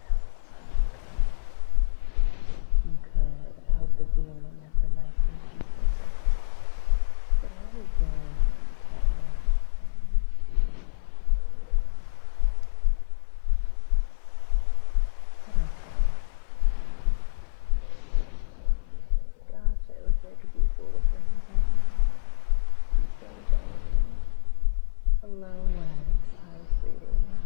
so good. Good. I hope this evening has been nice and peaceful so far. Today has been quite relaxing. but okay. Yeah. Gosh, I wish I could be full of wings right now. I'm so jelly. Hello, Wes. Hi, sweetie.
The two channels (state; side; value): silent; right; 57 dB below the other